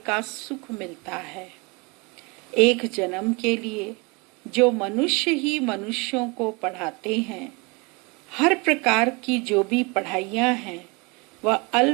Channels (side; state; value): left; quieter; 28.7 dB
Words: का सुख मिलता है। एक जन्म के लिए जो मनुष्य ही मनुष्यों को पढ़ाते हैं, हर प्रकार की जो भी पढ़ाइयाँ हैं वह